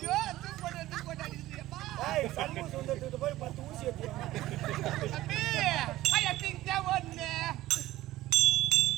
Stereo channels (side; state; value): left; quieter; 16.1 dB